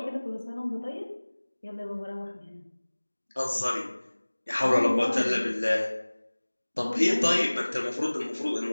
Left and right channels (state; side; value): inverted; both; correlation -1.00